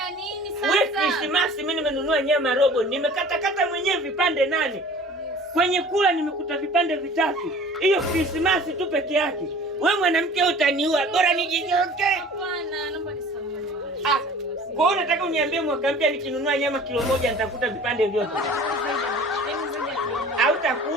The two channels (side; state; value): both; normal; correlation 0.45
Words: nini sasa? Wewe Krismasi mimi nimenunua nyama robo, nimekata mwenyewe vipande 8. Yes. Kwenye kula nimekuta vipande 3. Hiyo Krismasi tu peke yake. Wewe mwanamke utaniua, bora nijinyonge. Hapana, naomba nisamehe. Kwa hiyo unataka uniambie mwaka mpya nikinunua nyama kilo 1 nitakuta vipande vyote?